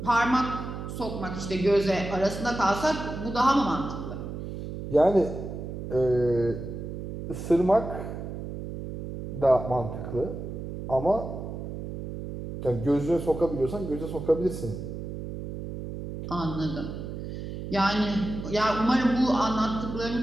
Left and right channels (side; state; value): right; noise; hum, 7 dB below the sound